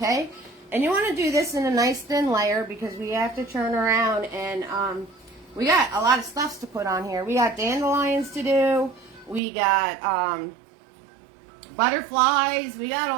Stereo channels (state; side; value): drops out; left; at 9.4 s